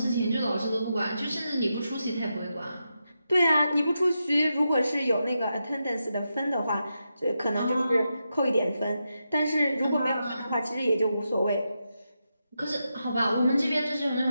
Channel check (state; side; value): inverted; both; correlation -0.87